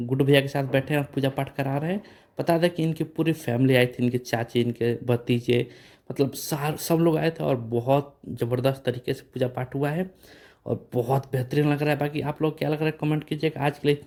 भैया के साथ बैठे हैं और पूजा पाठ करा रहे हैं। बता दें कि इनकी पूरी फैमिली आई थी, इनके चाची, इनके भतीजे, मतलब सार सब लोग आए थे और बहुत ज़बरदस्त तरीके से पूजा पाठ हुआ है और बहुत बेहतरीन लग रहा है। बाकी आप लोग क्या लग रहा है कमेंट कीजिएगा। आज के लिए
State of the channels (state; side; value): identical; both; correlation 1.00